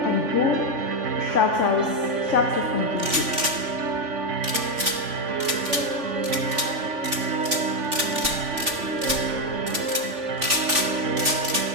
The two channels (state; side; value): late; left; 3.5 ms